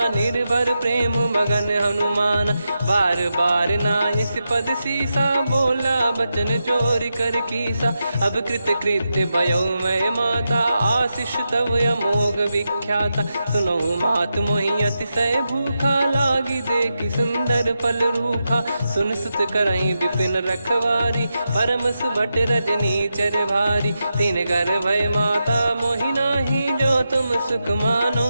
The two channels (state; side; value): inverted; both; correlation -0.88